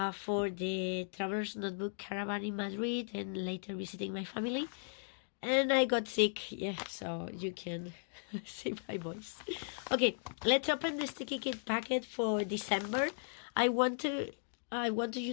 the Traveler's Notebook Caravan in Madrid and later visiting my family. And I got sick, so you can see my voice. Okay, let's open the sticky kit packet for December. I want you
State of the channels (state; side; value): silent; right; digital silence